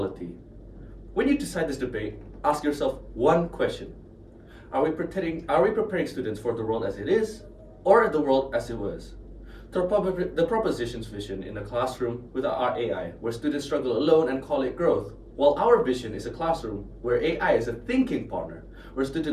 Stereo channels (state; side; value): identical; both; correlation 1.00